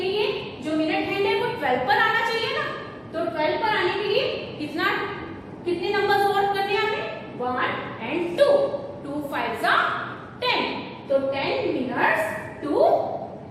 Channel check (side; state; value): both; identical; correlation 1.00